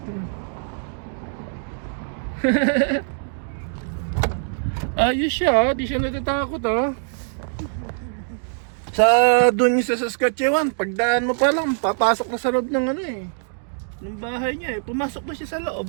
Ayos siya, di siya natatakot oh. Sa doon sa Saskatchewan, pagdaan mo pa lang, papasok na sa loob ng ano eh, ng bahay niya eh. Pumasok na siya sa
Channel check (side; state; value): left; silent; digital silence